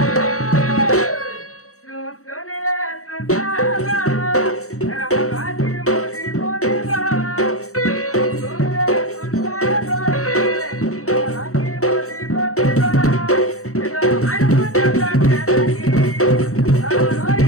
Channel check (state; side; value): late; right; 0.64 ms